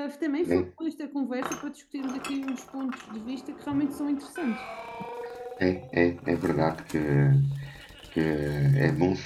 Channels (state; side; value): identical; both; correlation 1.00